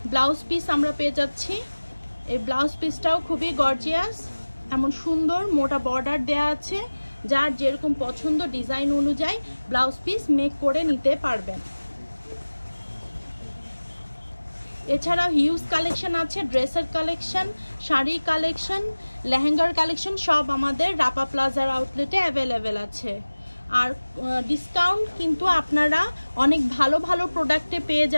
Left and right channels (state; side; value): inverted; both; correlation -1.00